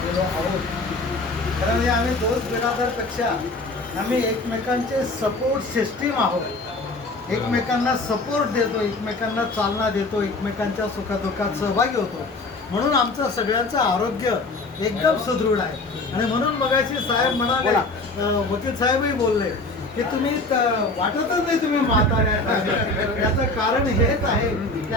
आहोत. खरं म्हणजे आम्ही दोस्त बिरादरपेक्षा आम्ही एकमेकांचे सपोर्ट सिस्टीम आहोत. एकमेकांना सपोर्ट देतो, एकमेकांना चालना देतो, एकमेकांच्या सुखदुःखात सहभागी होतो. म्हणून आमचं सगळ्यांचं आरोग्य एकदम सुदृढ आहे. आणि म्हणून मगाशी साहेब म्हणाले, वकील साहेबही बोलले की तुम्ही वाटतच नाही तुम्ही म्हातारे आहेत. याचं कारण हेच आहे की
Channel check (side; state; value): right; quieter; 3.1 dB